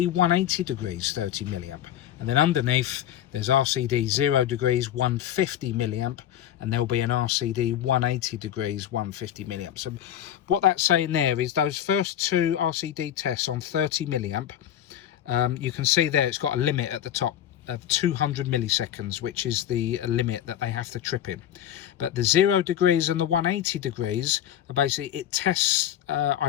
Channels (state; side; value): quieter; right; 11.0 dB